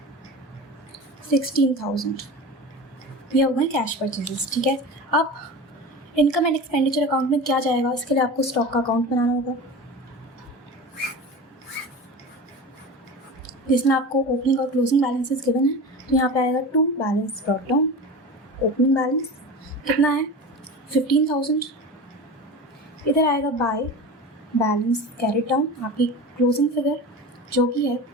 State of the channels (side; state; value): both; normal; correlation 0.31